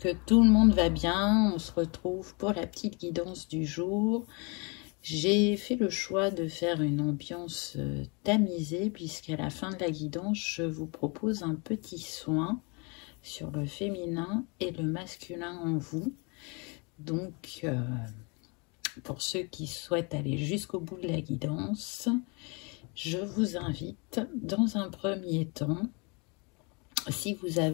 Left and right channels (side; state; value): right; quieter; 31.6 dB